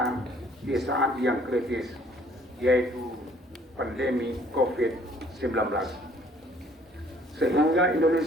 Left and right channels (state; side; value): normal; both; correlation 0.59